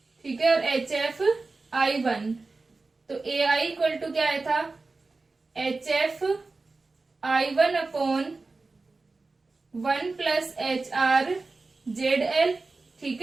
ठीक है, और HF I1। तो AI इक्वल टू क्या आया था, HF I1 upon 1 plus HR ZL। ठीक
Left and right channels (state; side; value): quieter; left; 3.7 dB